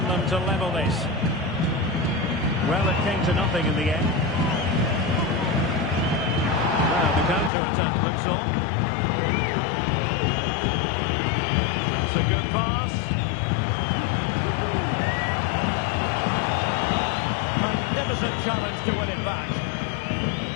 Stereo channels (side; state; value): right; drops out; at 7.5 s